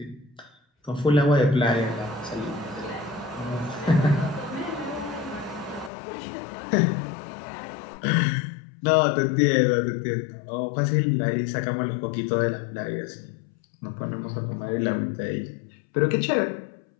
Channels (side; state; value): right; drops out; at 5.9 s